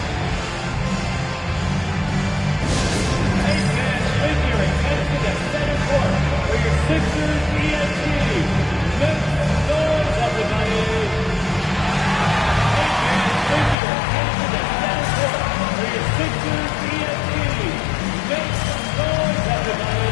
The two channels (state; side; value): drops out; right; at 13.8 s